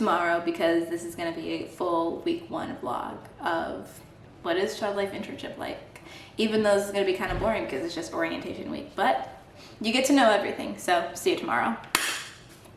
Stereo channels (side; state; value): both; identical; correlation 1.00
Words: because this is going to be a full week 1 vlog of what is child life internship like, even though this is going to be kind of boring because it's just orientation week, but you get to know everything. So see you tomorrow.